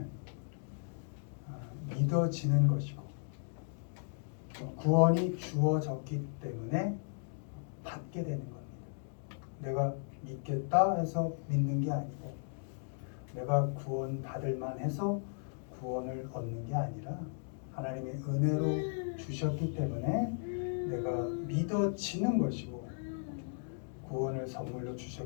믿어지는 것이고 구원이 주어졌기 때문에 받게 되는 겁니다. 내가 믿겠다 해서 믿는 게 아니고 내가 구원 받을 만해서 구원을 얻는 게 아니라 하나님의 은혜로 주셨기 때문에 내가 믿어지는 것이고 구원을 선물로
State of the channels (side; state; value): right; silent; digital silence